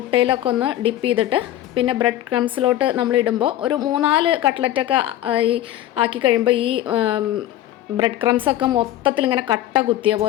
ഒന്ന് ഡിപ്പ് ചെയ്തിട്ട് പിന്നെ ബ്രെഡ് ക്രംസിലോട്ട് നമ്മൾ ഇടുമ്പോൾ ഒരു 3-4 കട്ട്ലറ്റൊക്കെ ഈ ആക്കി കഴിയുമ്പോൾ ഈ ബ്രെഡ് ക്രംസൊക്കെ മൊത്തത്തിൽ ഇങ്ങനെ കട്ട കുത്തിയ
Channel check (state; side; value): quieter; right; 13.3 dB